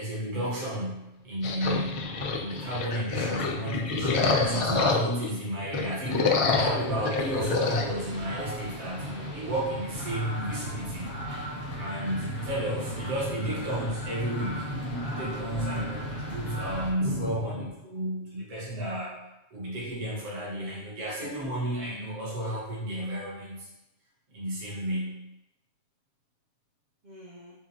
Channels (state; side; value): late; left; 7.3 ms